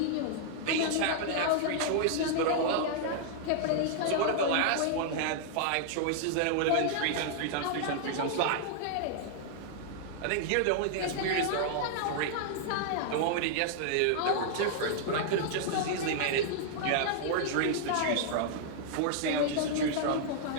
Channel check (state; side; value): different; both; correlation -0.01